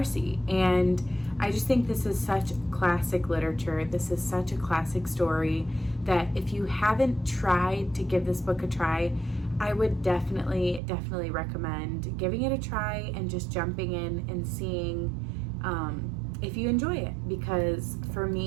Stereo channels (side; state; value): left; drops out; at 10.8 s